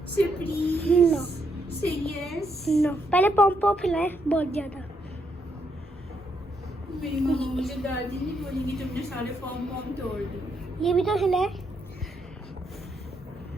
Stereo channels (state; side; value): normal; both; correlation 0.77